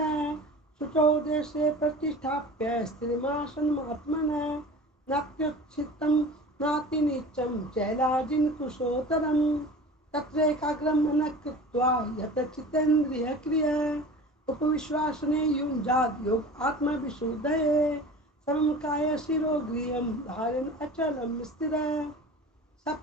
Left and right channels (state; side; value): normal; both; correlation 0.38